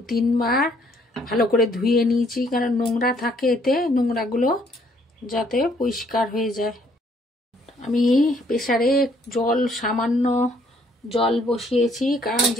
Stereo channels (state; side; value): normal; both; correlation 0.65